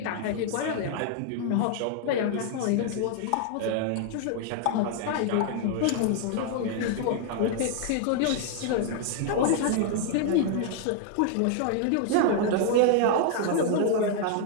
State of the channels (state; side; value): different; both; correlation 0.00